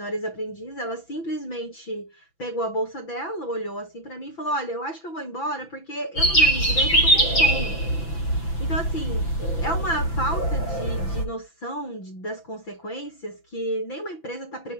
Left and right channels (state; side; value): late; right; 6.0 ms